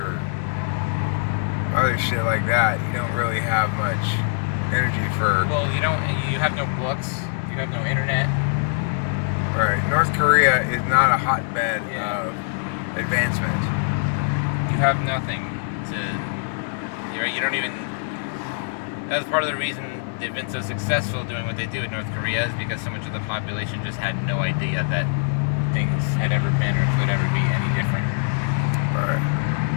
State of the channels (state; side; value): silent; right; digital silence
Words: other shit like that, you don't really have much energy for. Well, you have no books, you have no internet. Right. North Korea is not a hotbed of advancement. You have nothing to. You don't even. That was part of the reason they've been so successful doing what they do in North Korea, is because so much of the population just had no idea that things had ever been or could ever be any different. Right.